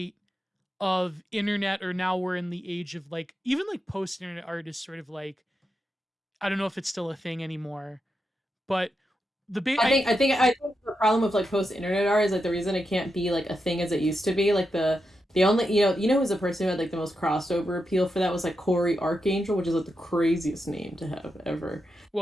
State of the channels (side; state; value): both; normal; correlation 0.87